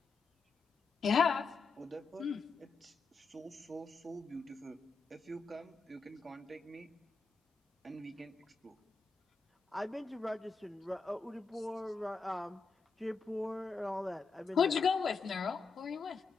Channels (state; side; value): quieter; right; 4.5 dB